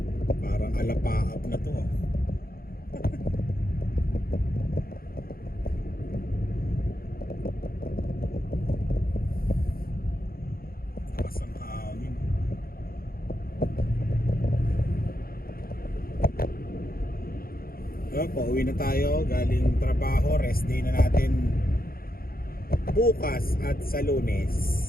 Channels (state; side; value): late; right; 0.43 ms